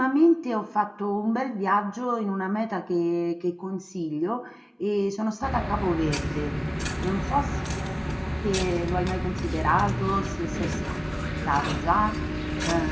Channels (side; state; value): both; identical; correlation 1.00